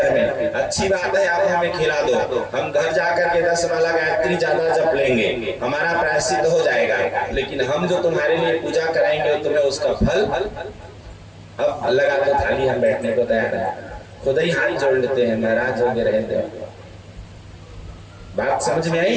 में, अच्छी बात है आप हमें खिला दो, हम घर जाकर के 10 माला गायत्री ज्यादा जप लेंगे, हमारा प्रायश्चित हो जाएगा, लेकिन हम जो तुम्हारे लिए पूजा कराएंगे तुम्हें उसका फल अब लगा दो थाली, हम बैठने को तैयार है। खुद ही हाथ जोड़ लेते हैं, महाराज हो गए रहते हैं। बात समझ में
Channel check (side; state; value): both; identical; correlation 1.00